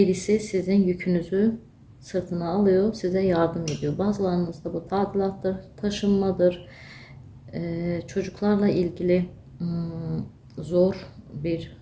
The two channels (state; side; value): identical; both; correlation 1.00